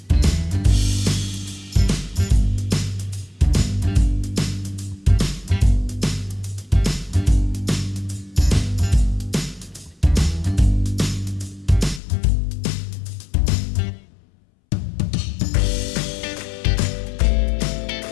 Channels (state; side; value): drops out; right; at 12.0 s